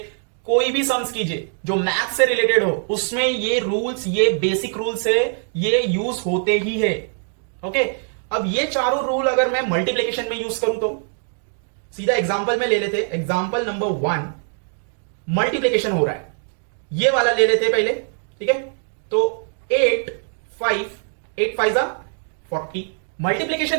कोई भी सम्स कीजिए जो मैथ से रिलेटेड हो, उसमें ये रूल्स, ये बेसिक रूल्स है, ये यूज होते ही है। ओके, अब ये चारों रूल अगर मैं मल्टीप्लिकेशन में यूज करूं तो सीधा एग्जांपल में ले लेते। एग्जांपल नंबर 1, मल्टीप्लिकेशन हो रहा है, ये वाला ले लेते पहले। ठीक है, तो 8 5 40।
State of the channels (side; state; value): left; silent; 58 dB below the other